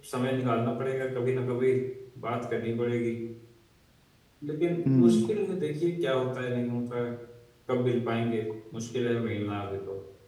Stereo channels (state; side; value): identical; both; correlation 1.00